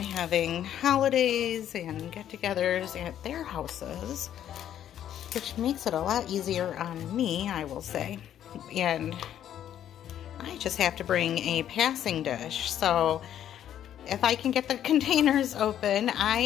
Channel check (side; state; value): right; quieter; 10.6 dB